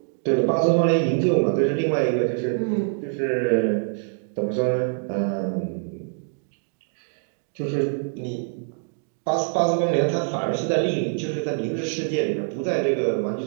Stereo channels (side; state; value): left; silent; 62 dB below the other